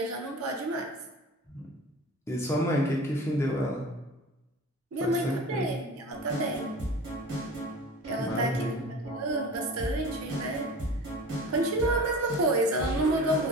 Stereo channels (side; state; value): both; normal; correlation 0.37